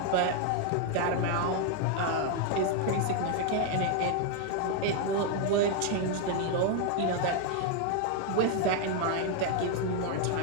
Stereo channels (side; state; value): both; different; correlation 0.01